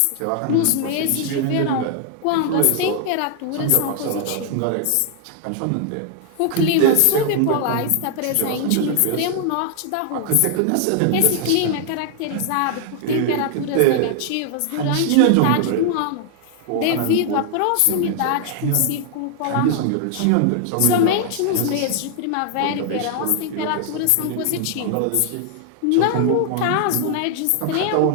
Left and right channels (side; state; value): both; different; correlation 0.00